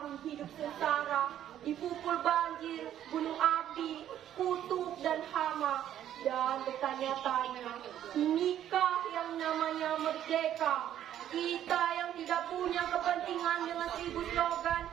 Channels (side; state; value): left; quieter; 11.1 dB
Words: hidup sengsara, dipukul banjir, gunung api, kutub dan hama, dan bertanya-tanya, inikah yang namanya merdeka? Kita yang tidak punya kepentingan dengan 1000 slogan